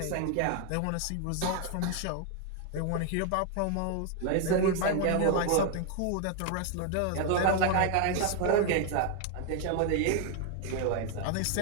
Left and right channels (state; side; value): different; both; correlation 0.00